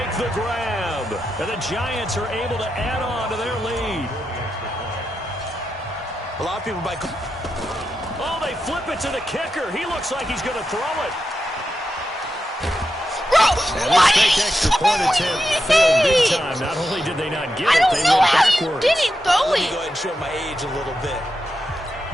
the grab, and the Giants are able to add on to their lead. A lot of people might... Oh, they flip it to the kicker. He looks like he's going to throw it. Bro, And what? this fake extra point attempt failed big time. Not only did they not get I it, don't they know went how you backwards. didn't throw Let me it. go ahead and show my age a little bit.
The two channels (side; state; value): both; normal; correlation 0.87